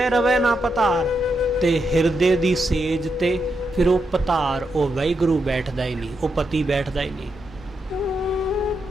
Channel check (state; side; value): normal; both; correlation 0.83